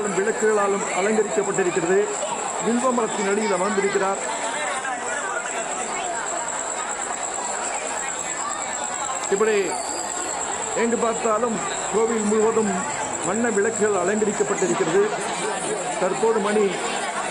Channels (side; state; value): both; identical; correlation 1.00